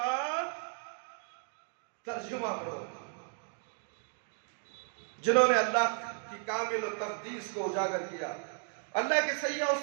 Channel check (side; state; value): left; silent; 55 dB below the other